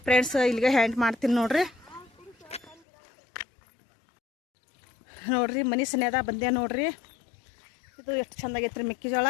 ಫ್ರೆಂಡ್ಸ್ ಇಲ್ಲಿಗೆ ಹ್ಯಾಂಡ್ ಮಾಡ್ತೀನಿ ನೋಡ್ರಿ. ನೋಡ್ರಿ ಮನೆ ಸನೇದ ಬಂದೆ ನೋಡ್ರಿ. ಇದು ಎಷ್ಟು ಚಂದಾಗೈತ್ರಿ ಮೆಕ್ಕೆಜೋಳ.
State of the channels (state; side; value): drops out; right; at 2.8 s